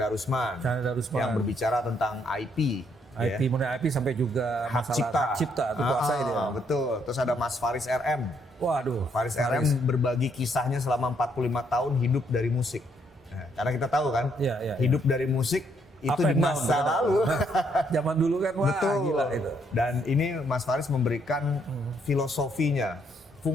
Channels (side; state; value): both; normal; correlation 0.72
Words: Chandra Darusman. yang berbicara tentang IP. IP, mulai IP sampai juga Hak masalah cipta. hak cipta itu kuasai dia. Betul. Terus ada Mas Faris RM. Waduh. Faris RM berbagi kisahnya selama 45 tahun hidup dari musik. Nah, karena kita tahu kan, Iya, iya, hidup dari musik itu Up di and down, masa betul. lalu. Zaman dulu kan wah Betul. gila itu. Dan ini Mas Faris memberikan filosofinya.